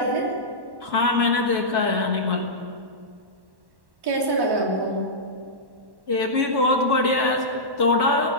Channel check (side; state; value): left; late; 1.1 ms